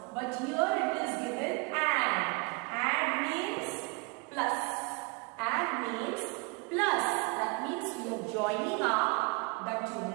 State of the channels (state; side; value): quieter; left; 30.6 dB